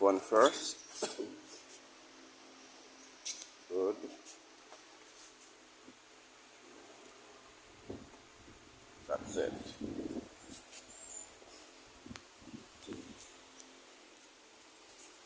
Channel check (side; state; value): both; identical; correlation 1.00